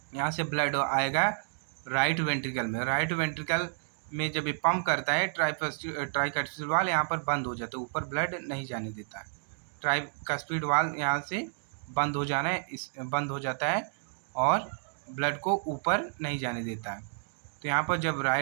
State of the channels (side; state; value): left; silent; digital silence